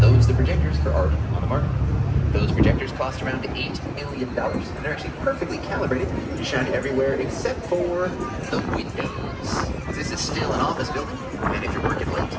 Those are the projectors for Art on the Mart. Those projectors cost around $8 million, and they're actually perfectly calibrated to shine everywhere except for the windows. This is still an office building, and if you're working late,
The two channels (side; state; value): both; identical; correlation 1.00